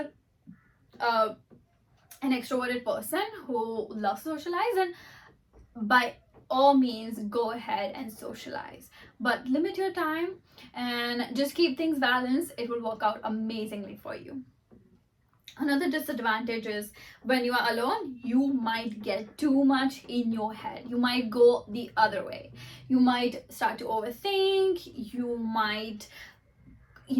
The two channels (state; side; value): identical; both; correlation 1.00